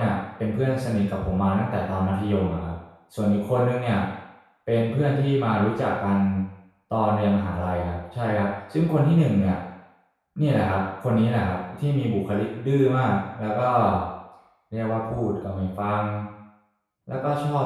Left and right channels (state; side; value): identical; both; correlation 1.00